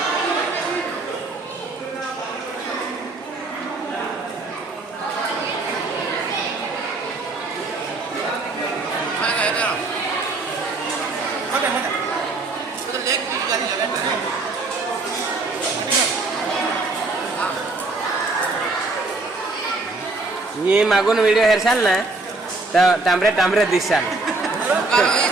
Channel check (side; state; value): left; quieter; 3.3 dB